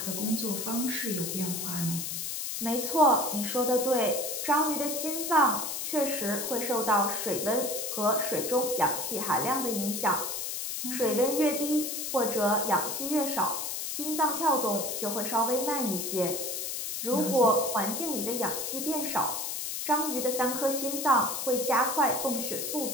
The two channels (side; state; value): left; noise; hiss, 3 dB below the sound